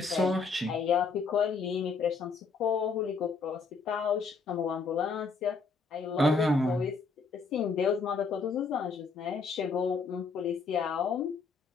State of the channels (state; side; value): quieter; right; 4.6 dB